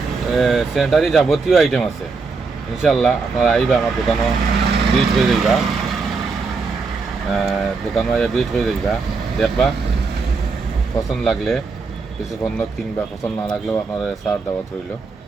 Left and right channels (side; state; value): left; quieter; 4.4 dB